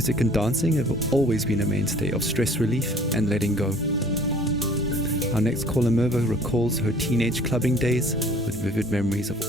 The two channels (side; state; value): both; normal; correlation 0.52